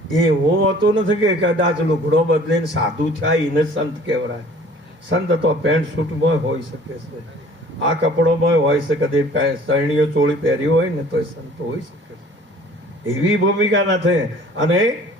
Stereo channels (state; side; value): normal; both; correlation 0.51